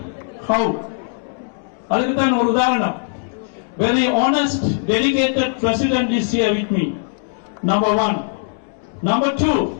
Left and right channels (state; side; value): silent; right; digital silence